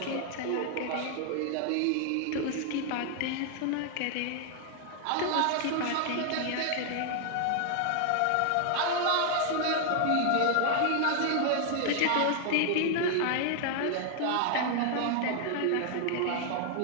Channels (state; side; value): different; both; correlation 0.00